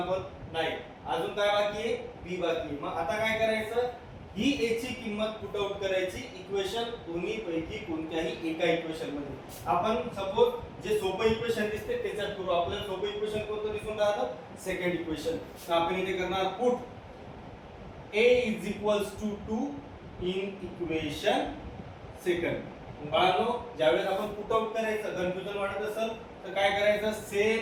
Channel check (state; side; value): identical; both; correlation 1.00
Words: नाही अजून काय बाकी आहे b बाकी आहे. मग आता काय करायचं, ही a ची किंमत पुट आउट करायची इक्वेशन दोन्ही पैकी कोणत्याही एका इक्वेशन मध्ये. आपण सपोज जे सोपं इक्वेशन दिसते त्याच्यात करू. आपल्याला सोपं इक्वेशन कोणतं दिसून राहतं सेकंड इक्वेशन. तर आपण इथे करणार put a is equals to 2 in equation second. बाळांनो ज्यावेळेस आपण पुट आउट करायचं कन्फ्युजन वाटत असेल तर काय करायचं, सेम